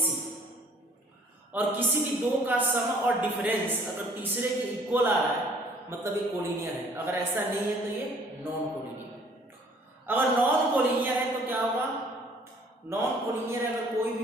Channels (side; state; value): both; normal; correlation 0.56